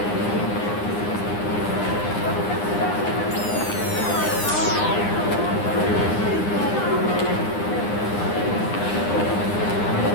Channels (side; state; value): right; late; 9.8 ms